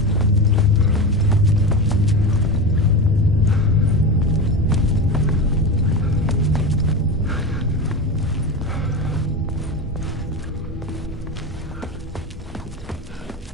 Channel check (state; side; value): normal; both; correlation 0.23